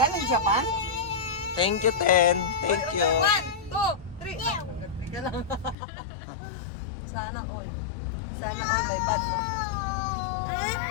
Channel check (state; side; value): drops out; right; at 5.8 s